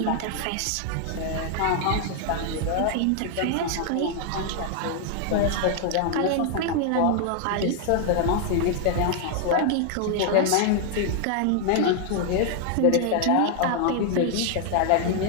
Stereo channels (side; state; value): both; different; correlation 0.00